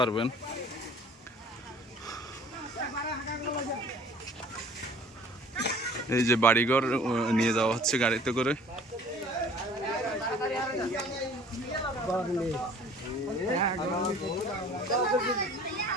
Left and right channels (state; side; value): normal; both; correlation 0.50